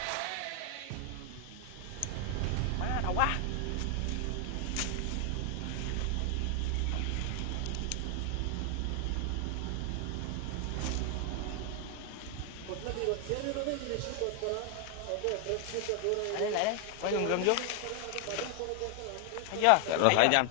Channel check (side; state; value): both; different; correlation 0.00